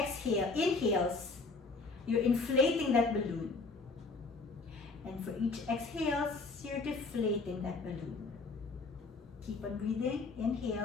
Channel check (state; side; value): quieter; right; 3.9 dB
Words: you're inflating that balloon. And for each exhales, you're deflating that balloon. Keep on breathing.